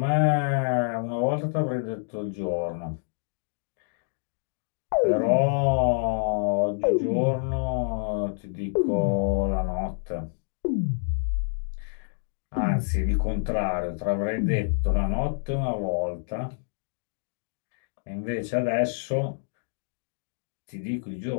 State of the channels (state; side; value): silent; right; digital silence